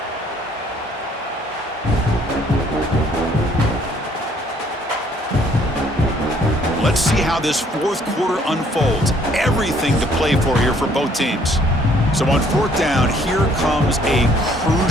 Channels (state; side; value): normal; both; correlation 0.63